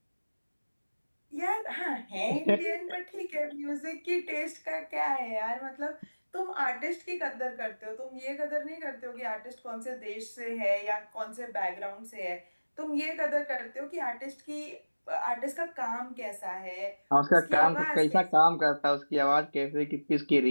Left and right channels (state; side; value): inverted; both; correlation -1.00